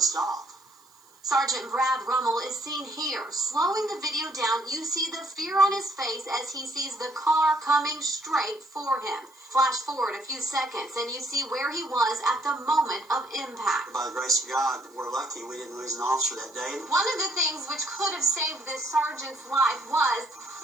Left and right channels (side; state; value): right; noise; hiss, 29 dB below the sound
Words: stop. Sergeant Brad Rummel is seen here. Slowing the video down, you see the fear on his face as he sees the car coming straight for him. Flash forward a few seconds and you see where he was at the moment of impact. By the grace of God, we're lucky we didn't lose an officer that day. One of the things which could have saved this sergeant's life was